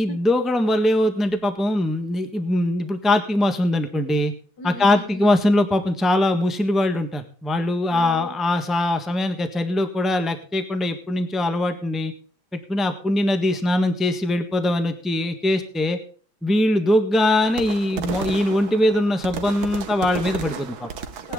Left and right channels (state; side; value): normal; both; correlation 0.83